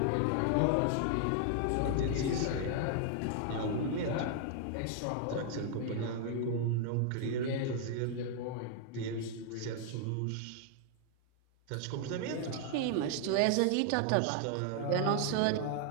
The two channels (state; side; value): different; both; correlation 0.00